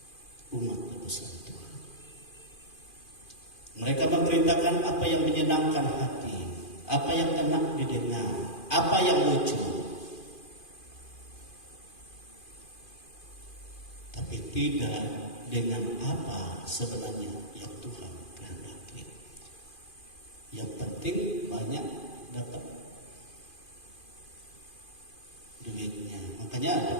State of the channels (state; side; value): late; right; 2.5 ms